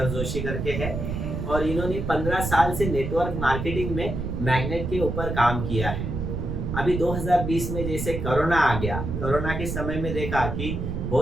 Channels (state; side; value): noise; right; rumble, 4 dB below the sound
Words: जोशी करके है, और इन्होंने 15 साल से नेटवर्क मार्केटिंग में मैग्नेट के ऊपर काम किया है। अभी 2020 में जैसे कोरोना आ गया, कोरोना के समय में देखा कि